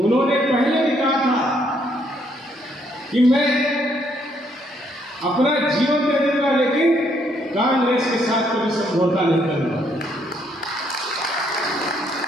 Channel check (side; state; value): both; normal; correlation 0.71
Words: पहले भी कहा था कि मैं अपना जीवन दे दूंगा, लेकिन कांग्रेस के साथ कोई समझौता नहीं करूंगा।